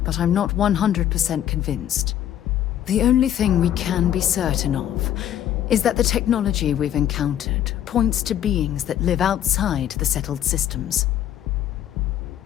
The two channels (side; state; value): right; quieter; 11.0 dB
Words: but I'm not 100% convinced. The only thing we can be certain of is that the technology we've encountered points to beings that live outside the settled systems.